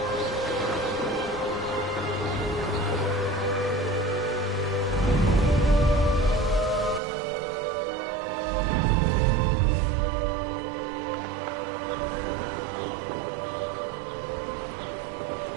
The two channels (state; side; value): drops out; left; at 7.0 s